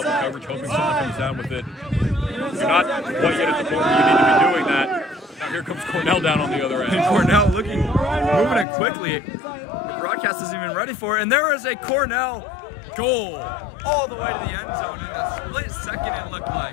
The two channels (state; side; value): drops out; right; at 8.7 s